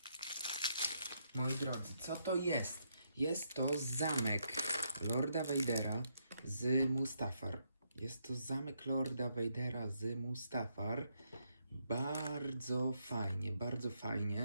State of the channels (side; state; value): both; inverted; correlation -0.77